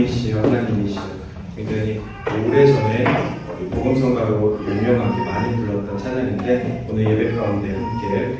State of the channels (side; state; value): both; identical; correlation 1.00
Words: 하나님이시여. 굉장히 오래전에 복음성가로 유명하게 많이 불렀던 찬양인데 오늘 예배 가운데 함께